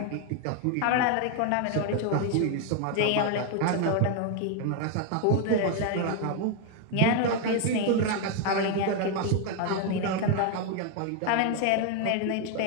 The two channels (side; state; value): both; different; correlation 0.00